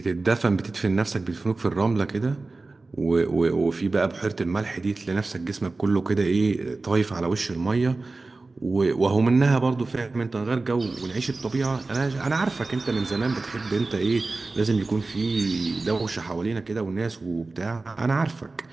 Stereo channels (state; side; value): quieter; left; 3.5 dB